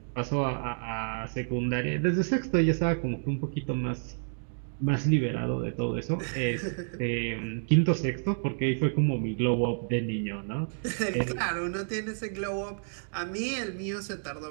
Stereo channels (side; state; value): left; silent; digital silence